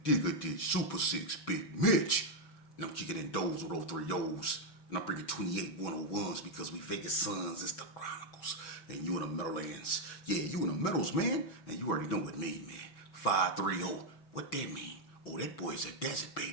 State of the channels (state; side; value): late; right; 5.3 ms